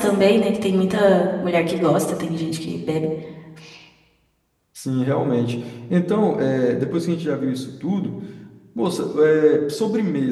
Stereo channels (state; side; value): identical; both; correlation 1.00